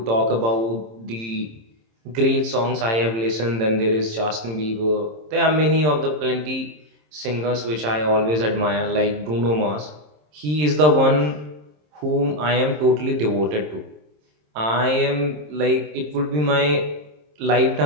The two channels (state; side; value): late; left; 26 ms